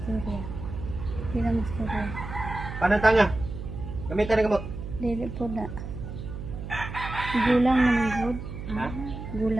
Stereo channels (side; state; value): right; noise; hum, 8 dB below the sound